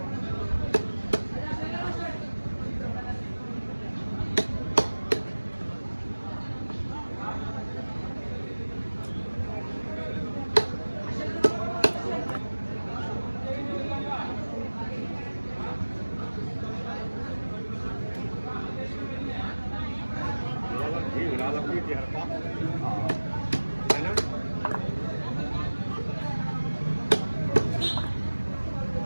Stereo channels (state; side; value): inverted; both; correlation -1.00